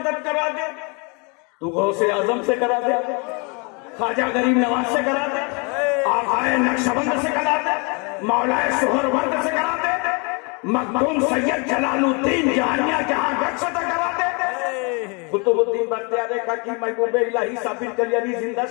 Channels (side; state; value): right; quieter; 32.3 dB